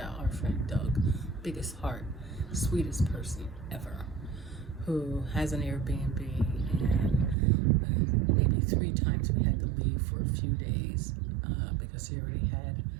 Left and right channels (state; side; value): drops out; left; at 7.4 s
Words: our friend Doug, biggest heart, sweetest person ever, who has an Airbnb, and maybe 3 times we had to leave for a few days because he already had